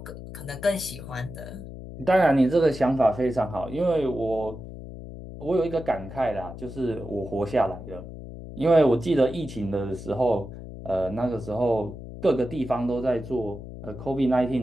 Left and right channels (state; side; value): noise; left; hum, 12 dB below the sound